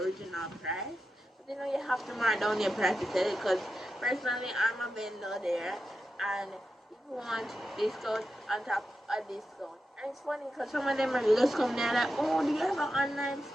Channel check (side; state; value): both; normal; correlation 0.89